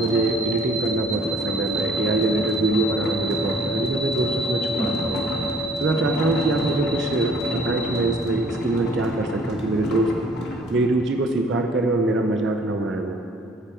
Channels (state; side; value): normal; both; correlation 0.57